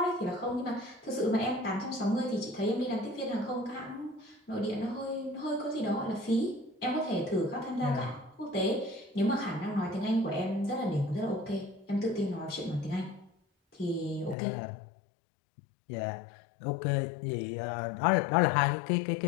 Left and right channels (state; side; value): drops out; right; at 14.4 s